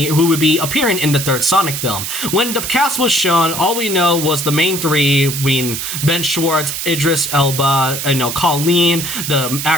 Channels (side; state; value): right; noise; hiss, 5 dB below the sound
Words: who would be appearing in the third Sonic film. When the cast was shown, all we know was the main three, being Ben Schwartz, Idris Elba, Colleen, the